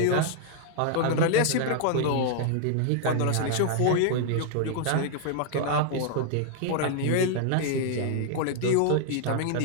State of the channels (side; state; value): both; different; correlation 0.00